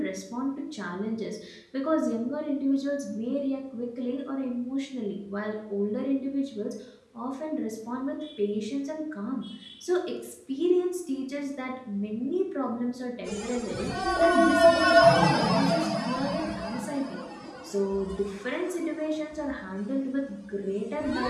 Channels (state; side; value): identical; both; correlation 1.00